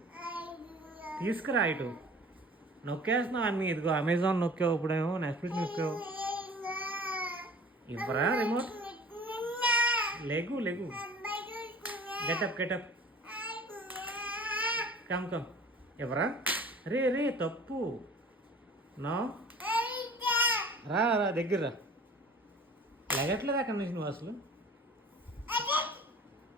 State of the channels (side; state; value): both; normal; correlation 0.44